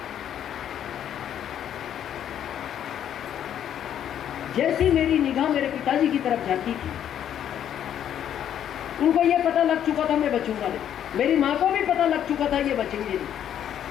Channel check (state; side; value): quieter; right; 10.0 dB